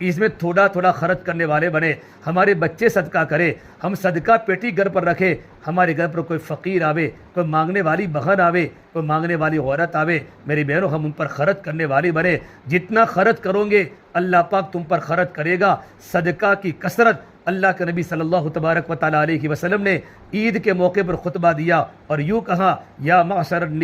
थोड़ा थोड़ा खर्च करने वाले बने। हमारे बच्चे सदका करें, हम सदका पेटी घर पर रखें, हमारे घर पर कोई फ़कीर आवे, कोई मांगने वाली बहन आवे, कोई मांगने वाली औरत आवे, मेरी बहनों हम उन पर खर्च करने वाली बने। जितना खर्च करोगे अल्लाह पाक तुम पर खर्च करेगा। सदका की कसरत, अल्लाह के नबी सल्लल्लाहु तबारक व तआला अलैहि वसल्लम ने ईद के मौके पर खुतबा दिया और यूँ कहा, या माशर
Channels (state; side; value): identical; both; correlation 1.00